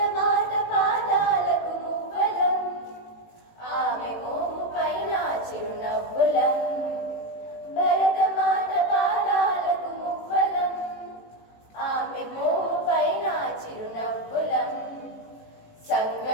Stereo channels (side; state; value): right; late; 18 ms